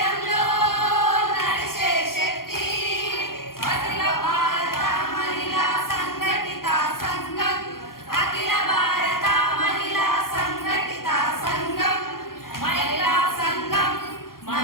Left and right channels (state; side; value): late; right; 0.92 ms